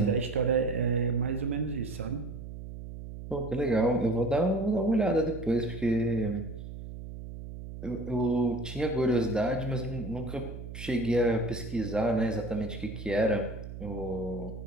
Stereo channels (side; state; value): right; noise; hum, 10 dB below the sound